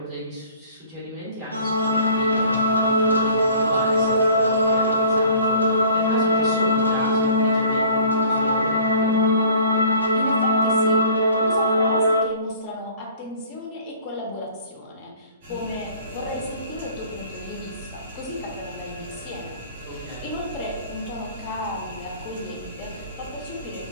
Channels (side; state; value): both; inverted; correlation -0.50